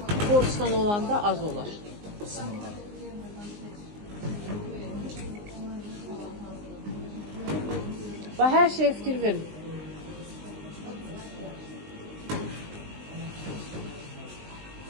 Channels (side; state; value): left; late; 19 ms